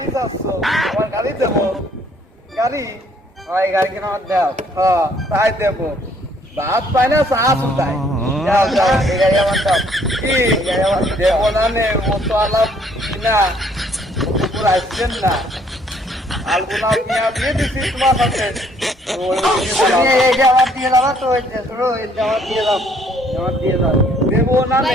যাচ্ছ আমার গাড়ি দেবো গাড়ি এই গাড়িকে নামাজ দাও হ্যাঁ তাই দেবো ভাত পায় না চা শুধাই যাও যাও এই গাড়ি আমার দাও কি গাড়ি আমার দেবো না নে ও তো আলাপ না পুরো আসছেন না আলগুনা মিয়া বিয়ে দিছি তোমার সাথে এই জামাত দিয়ে দাও তো এই জামাত দিয়ে দাও জামাত দিয়ে দাও দেবো না নে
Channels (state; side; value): normal; both; correlation 0.64